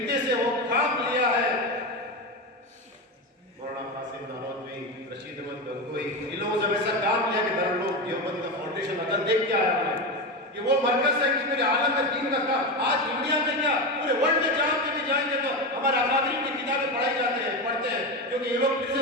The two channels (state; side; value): normal; both; correlation 0.18